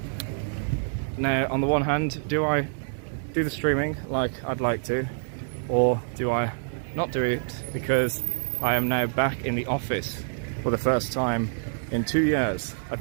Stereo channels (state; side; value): silent; left; digital silence